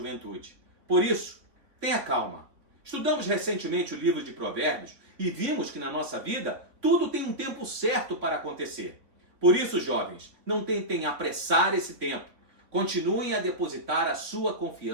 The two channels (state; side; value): late; left; 3.3 ms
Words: Por isso, tenha calma. Estudamos recentemente o livro de Provérbios e vimos que na nossa vida tudo tem um tempo certo para acontecer. Por isso, jovens, não tentem apressar esse tempo. Continuem a depositar a sua